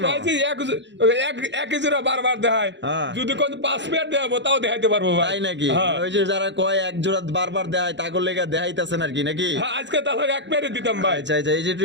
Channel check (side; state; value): left; late; 0.52 ms